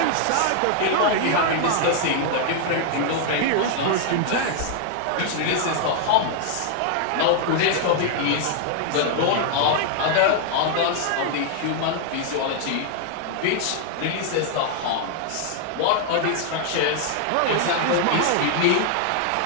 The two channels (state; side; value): different; both; correlation 0.00